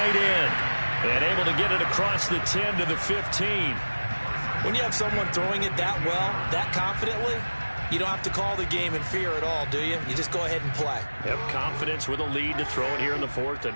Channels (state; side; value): inverted; both; correlation -1.00